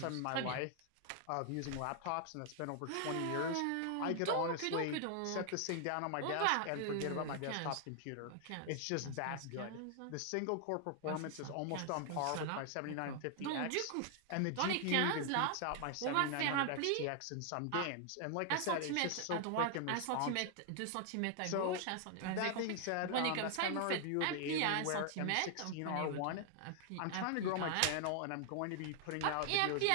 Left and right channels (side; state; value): both; different; correlation 0.00